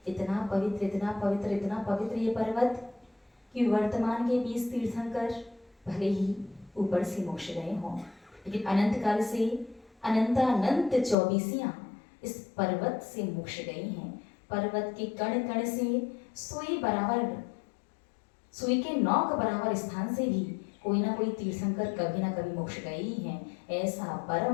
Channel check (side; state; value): right; drops out; at 11.2 s